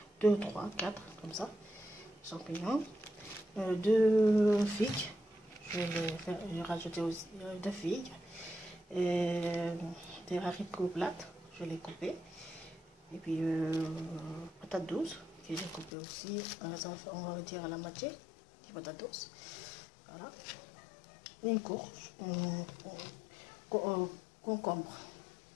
2, 3, 4, comme ça. Champignons. 2 figues. Je vais rajouter aussi 2 figues. Et des haricots plats. Je vais les couper. Et puis, patates douces. Que j'ai coupé aussi. On va dire à la moitié. Des patates douces. Voilà. Une courge. Concombre.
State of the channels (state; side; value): drops out; right; at 15.9 s